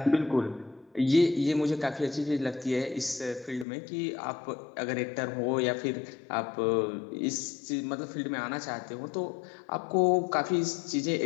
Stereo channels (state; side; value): drops out; right; at 3.7 s